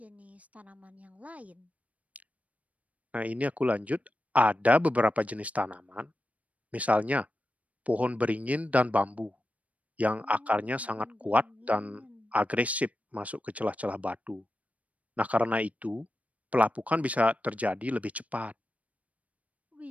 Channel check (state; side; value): late; left; 0.068 ms